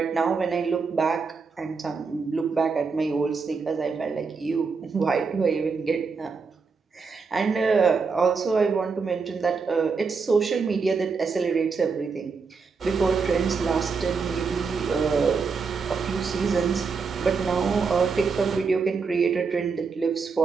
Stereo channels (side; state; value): left; quieter; 5.0 dB